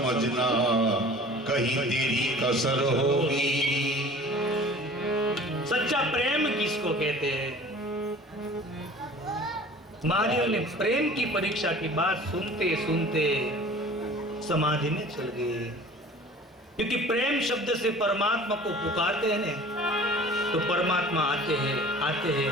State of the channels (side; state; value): both; normal; correlation 0.45